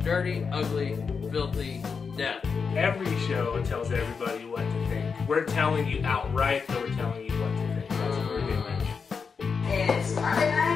Dirty, ugly, filthy death. Every show tells everybody what to think. We're telling you outright that we're telling you what to think. That's what we're doing. It's Monday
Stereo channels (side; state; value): right; quieter; 5.6 dB